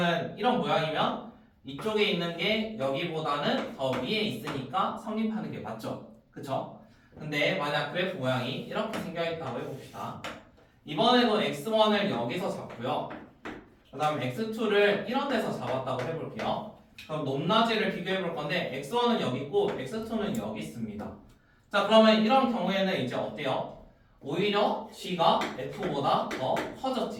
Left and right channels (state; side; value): identical; both; correlation 1.00